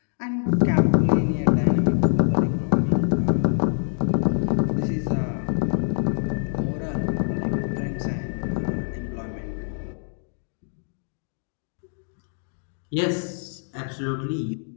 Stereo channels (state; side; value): silent; right; digital silence